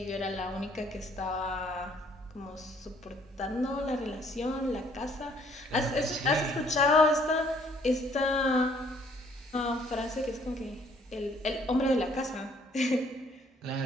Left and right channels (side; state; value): both; normal; correlation 0.62